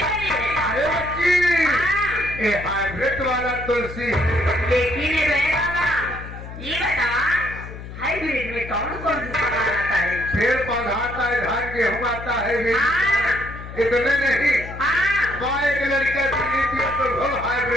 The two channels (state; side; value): noise; left; hum, 12 dB below the sound